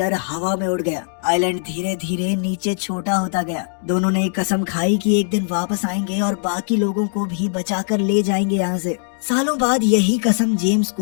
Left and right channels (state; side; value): silent; right; digital silence